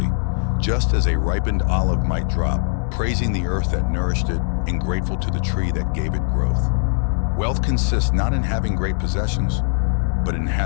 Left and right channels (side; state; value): right; silent; 65 dB below the other